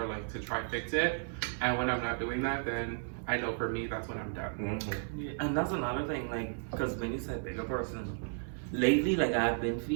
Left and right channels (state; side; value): silent; left; 55 dB below the other